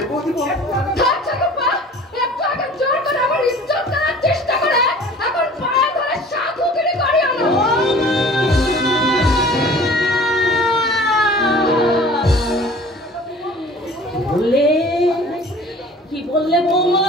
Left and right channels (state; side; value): normal; both; correlation 0.46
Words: বৌদি বলো না। ধরছো রূপা, একটু আগে জোর করে আমার ইজ্জত করার চেষ্টা করে এখন পায়ে ধরে সাধুগিরি করিও না। বললে কি বললে